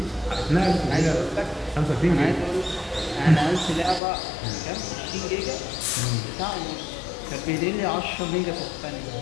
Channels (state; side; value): drops out; right; at 4.0 s